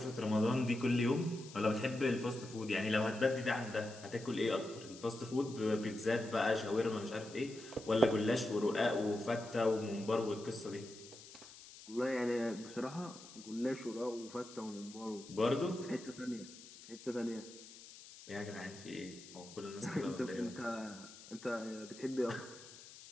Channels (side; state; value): left; noise; hiss, 17 dB below the sound